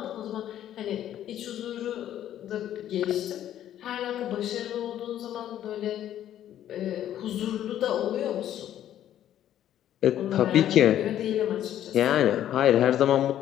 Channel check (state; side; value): quieter; right; 11.5 dB